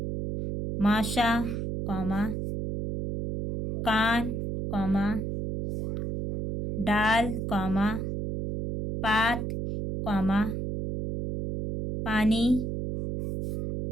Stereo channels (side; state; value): right; noise; hum, 3 dB below the sound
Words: माशा, कॉमा, कान, कॉमा, डाल, कॉमा, पात, कॉमा, पानी,